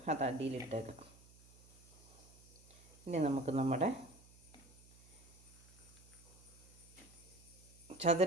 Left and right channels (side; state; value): right; noise; hum, 22 dB below the sound